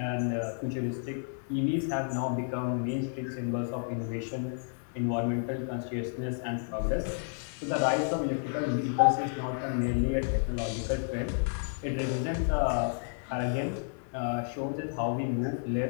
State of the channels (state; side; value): silent; right; digital silence